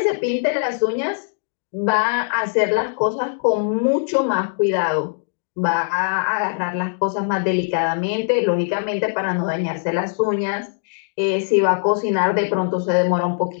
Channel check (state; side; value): silent; right; digital silence